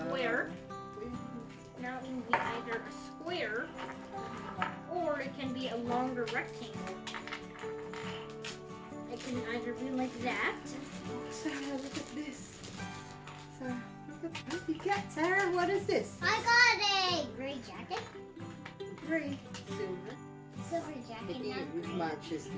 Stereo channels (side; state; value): both; identical; correlation 1.00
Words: Now it can be either a square or it can be a longer rectangle. It can either be like that. Sarah, look at this. Sarah, look at what you got, Sarah. What is this? I got a gray jacket. Gray, silver. Silver jacket. It matches